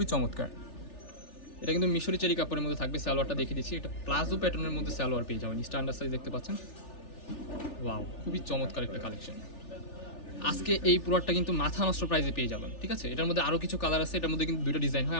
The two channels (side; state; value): right; late; 3.4 ms